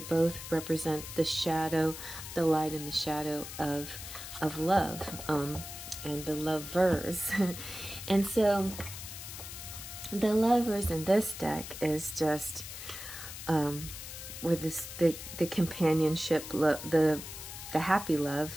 both represent the shadow, the light and the shadow of love, and the lovers. And so the Lovers in this deck is just with the companionship, the happy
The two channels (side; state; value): left; noise; hiss, 10 dB below the sound